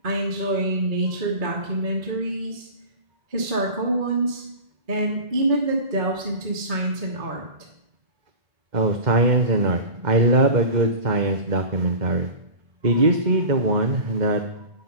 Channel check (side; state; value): left; late; 2.2 ms